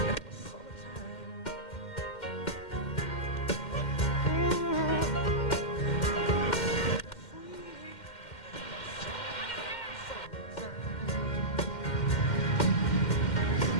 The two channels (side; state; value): right; late; 2.1 ms